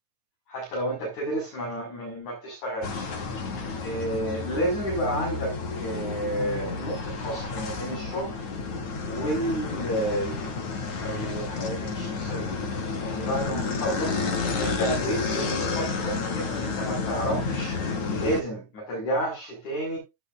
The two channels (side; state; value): right; late; 9.3 ms